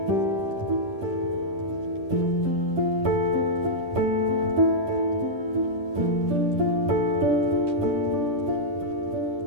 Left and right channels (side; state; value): left; late; 10 ms